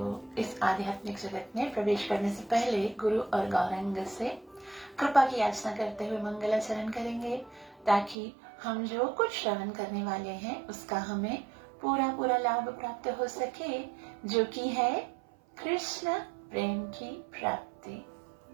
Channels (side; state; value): left; drops out; at 8.2 s